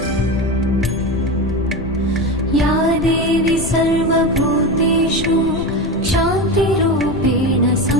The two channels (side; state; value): left; noise; rumble, 10 dB below the sound